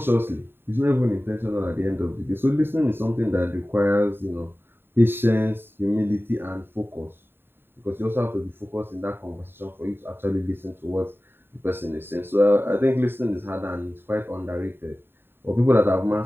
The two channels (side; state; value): left; late; 0.11 ms